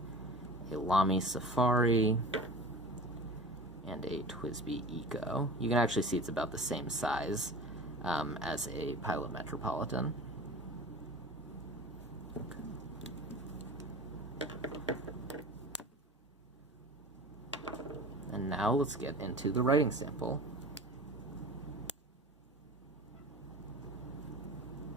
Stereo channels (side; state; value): both; normal; correlation 0.37